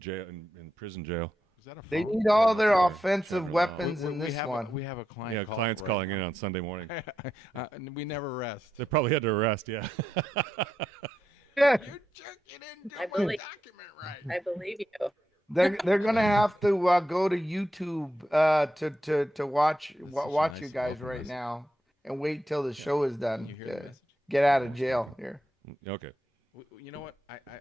in prison jail. Is that a They phone? need all their Yeah, offensive Trevor weapons We in this have one. we have a client. Yeah, clients right calling now. in on Sunday morning. We never rest. They probably had to arrest. Yeah. Yeah, I believe, I believe you. they're gonna have to go to YouTube to watch such a watch nice you guys welcome right message. now and wait till the show is done. You hear the to message? get out of jail here. Okay. You know what?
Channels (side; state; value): both; normal; correlation 0.85